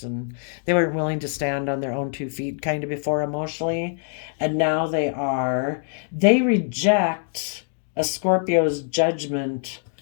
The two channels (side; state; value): right; silent; digital silence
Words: They weren't willing to stand on their own 2 feet kind of before emotionally, and now they are. They reject a Scorpio's judgment